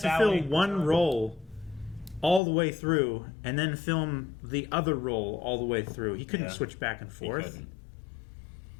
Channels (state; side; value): drops out; right; at 2.4 s